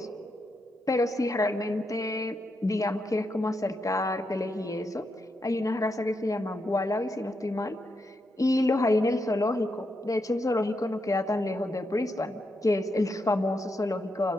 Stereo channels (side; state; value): both; normal; correlation 0.83